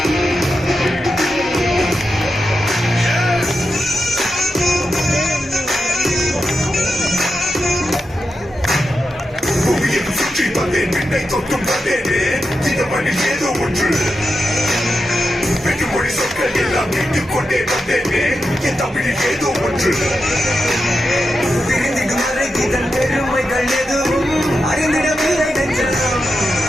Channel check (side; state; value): both; normal; correlation 0.88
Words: தொட்டும் வந்தேனே இந்த மண்ணில் ஏதோ ஒன்று வெற்றுமொழி சொற்கள் எல்லாம் மீட்டுக் கொண்டே வந்தேனே என் தமிழில் ஏதோ ஒன்று பிரிந்து மறைக்கிதன் பெருமைகள் எதுவும் அறிந்திடவில்லை நெஞ்சம்.